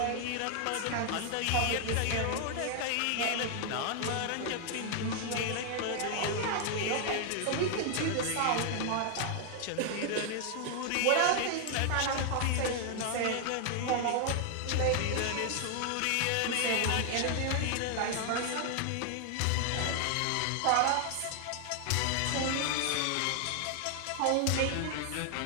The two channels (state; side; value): different; both; correlation 0.00